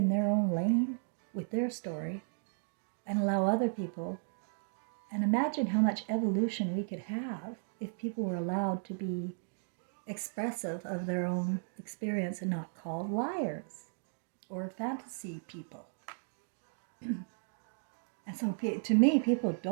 their own lane with their story and allow other people. And imagine how much evolution we could have if people were allowed to be expressive of their own experience and not called liars or fantasy people. And so to me, people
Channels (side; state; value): left; silent; digital silence